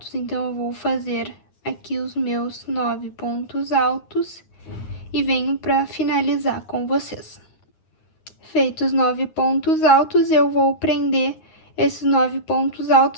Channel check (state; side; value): late; right; 9.5 ms